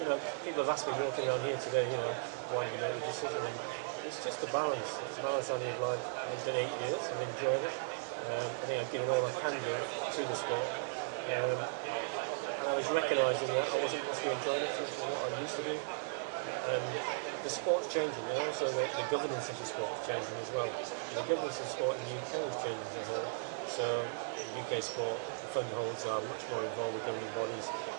know, people have asked me walking around here today, you know, why did you make the decision? And it's just a balance. It's a balance only of like, I've done 8 years, I've enjoyed it. I think I've given all I can give to the sport. And I was recognising that I wasn't possibly enjoying it as much as what I used to do. And the sport's changing, and also the governance of the sport's changing as well. And the governance of the sport in the UK is changing as a whole. So UK sport, the fund holds are much more involved with governing bodies.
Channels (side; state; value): left; silent; digital silence